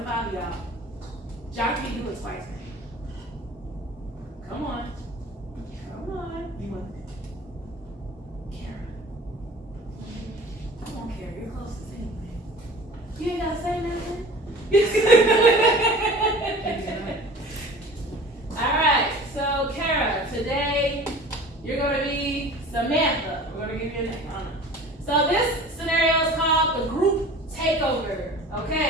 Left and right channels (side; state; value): both; normal; correlation 0.42